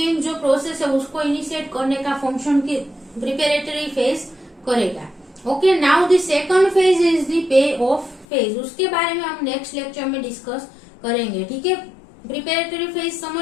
जो प्रोसेस है उसको इनिशिएट करने का फंक्शन की प्रिपेरेटरी फेज करेगा. Okay, now the second phase is the pay off phase. उसके बारे में हम नेक्स्ट लेक्चर में डिस्कस करेंगे. ठीक है, प्रिपेरेटरी फेज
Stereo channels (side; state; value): right; drops out; at 8.2 s